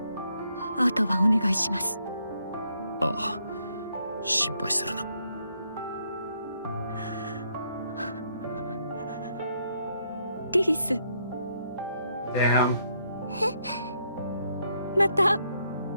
あとはお願いします。ああ、心配するな。リリス、 Damn. また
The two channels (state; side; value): inverted; both; correlation -0.74